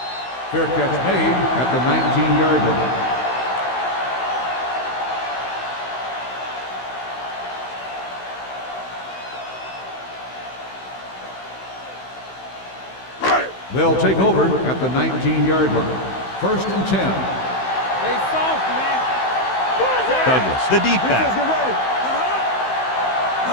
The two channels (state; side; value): late; right; 16 ms